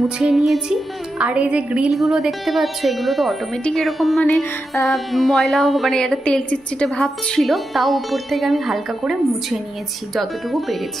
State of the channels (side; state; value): both; normal; correlation 0.88